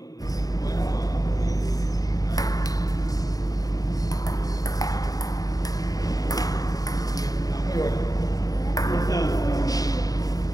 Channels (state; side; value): late; right; 0.18 ms